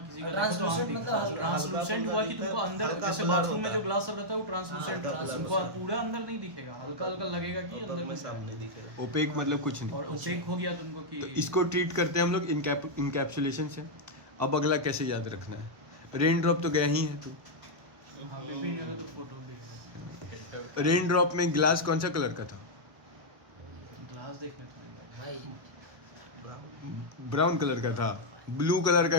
का देखो तो आंख Translucent दिखता है। मतलब ट्रांसलूसेंट हुआ कि तुमको अंदर, जैसे बाथरूम में जो ग्लास सब रहता है वो ट्रांसलूसेंट रहता है, तुमको पूरा अंदर नहीं दिखेगा, हल्का हल्का लगेगा कि अंदर में साफ नहीं दिखेगा। ओपेक मतलब कुछ नहीं। और ओपेक हो गया तुमको कि तो इसको ट्रीट करते हैं हम लोग इनकैप्सुलेशन से। अब अगला कैसे याद रखना है, रेन ड्रॉप तो गया ही है तू, हाँ पेपी जगह तो फोटो भी है। रेन ड्रॉप में ग्लास कौन सा कलर का था? ग्लास देखने थोड़ी गए। भाई ब्राउन कलर का था। ब्लू कलर का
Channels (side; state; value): left; late; 1.2 ms